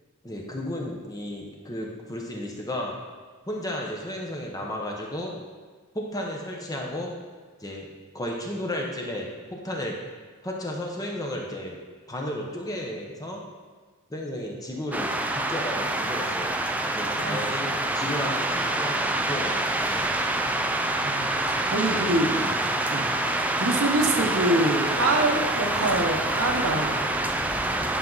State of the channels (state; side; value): normal; both; correlation 0.37